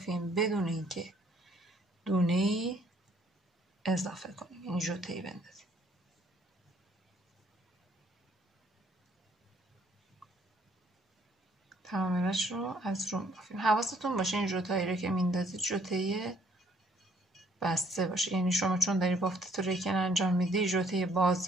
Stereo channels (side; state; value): both; normal; correlation 0.63